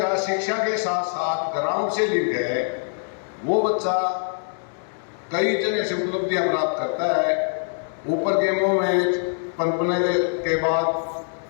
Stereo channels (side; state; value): right; silent; digital silence